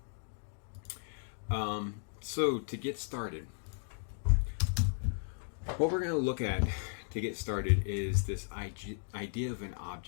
So to get started, what we're going to look at to get started is this idea of an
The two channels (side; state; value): right; silent; digital silence